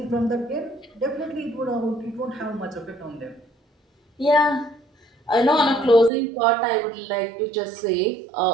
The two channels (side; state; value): left; drops out; at 6.1 s